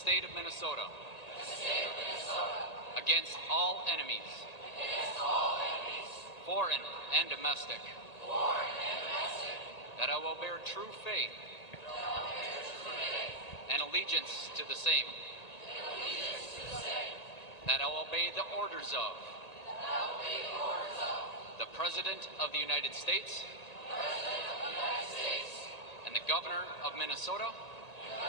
of Minnesota. Against all enemies. Foreign and domestic. That I will bear true faith. And allegiance to the same. That I will obey the orders of. The President of the United States. And the Governor of Minnesota.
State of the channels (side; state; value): right; late; 1.8 ms